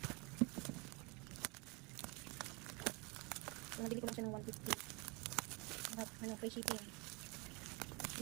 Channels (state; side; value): quieter; left; 28.3 dB